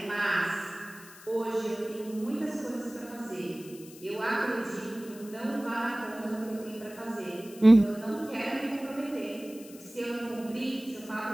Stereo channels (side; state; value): left; noise; hiss, 19 dB below the sound